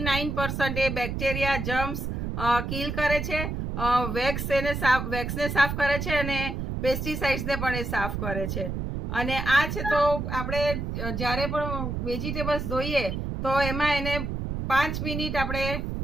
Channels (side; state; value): right; noise; rumble, 3 dB below the sound